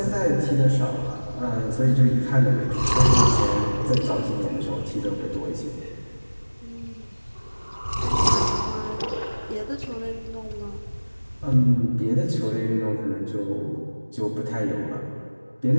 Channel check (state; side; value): inverted; both; correlation -1.00